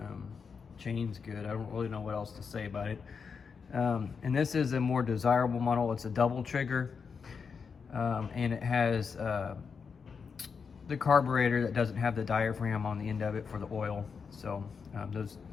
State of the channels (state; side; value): quieter; right; 5.7 dB